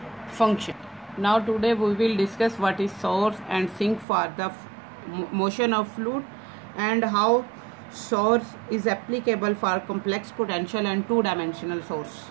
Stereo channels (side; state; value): left; drops out; at 4.0 s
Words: function. Now today we will discuss what is source and sink for the motion of fluid and how source is applicable for complex potential and two-dimensional source.